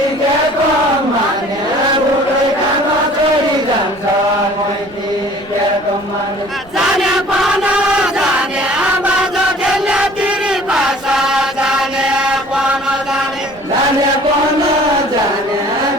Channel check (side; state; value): right; noise; rumble, 24 dB below the sound